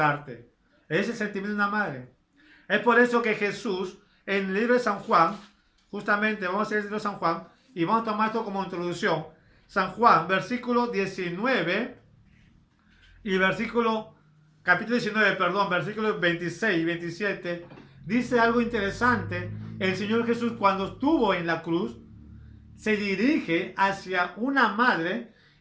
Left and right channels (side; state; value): both; identical; correlation 1.00